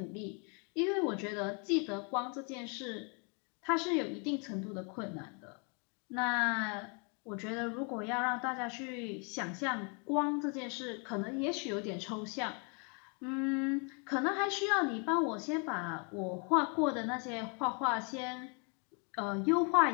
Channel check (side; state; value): right; quieter; 36.6 dB